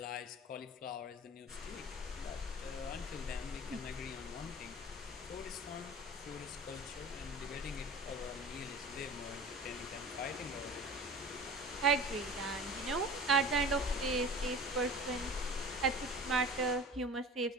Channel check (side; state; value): both; normal; correlation 0.38